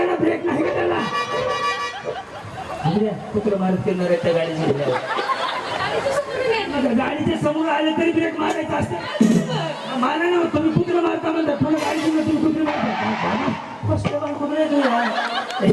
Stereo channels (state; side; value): identical; both; correlation 1.00